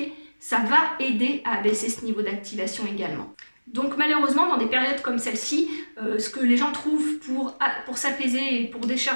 ça va aider à abaisser ce niveau d'activation également. Donc malheureusement, dans des périodes comme celle-ci, ce que les gens trouvent pour s'apaiser et pour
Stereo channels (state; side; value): inverted; both; correlation -1.00